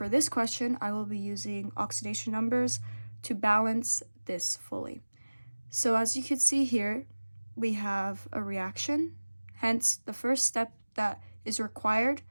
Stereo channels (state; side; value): inverted; both; correlation -1.00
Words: this question, I will be using oxidation numbers to balance this fully. So as you can see here, we have a reaction. Hence, the first step that is required